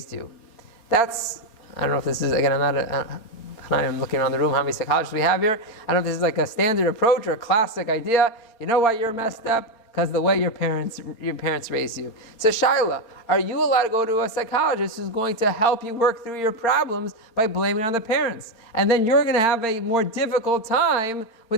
you? That's, I don't know if this is, again, I'm looking around the room, how many psychologists we have here. I don't know if this is like a standard approach or a classic idea. You know why you're messed up? Because the way your parents raised you. So Shaila, are you allowed to go to a psychologist who's going to help you work through your problems by blaming it on the parents? And then you're going to have a more difficult time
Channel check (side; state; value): right; late; 4.4 ms